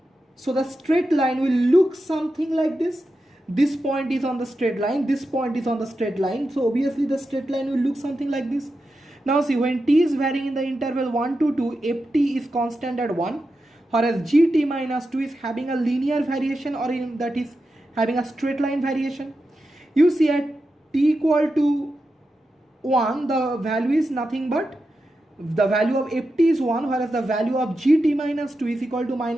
straight line will look something like this. This point is on the straight line, this point is on the straight line. So obviously the straight line will look something like this. Now see, when t is varying in the interval 1 to 2, ft is constant at 1, whereas gt minus 2 is having a linear variation, or that is having a straight line variation. You see at t equal to 1, the value is nothing but the value of ft is 1, whereas the value of gt minus 2 is equal to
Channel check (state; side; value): normal; both; correlation 0.89